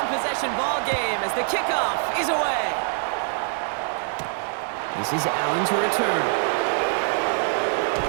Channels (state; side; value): silent; left; 59 dB below the other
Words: ball game as the kickoff is away. This is Allen to return.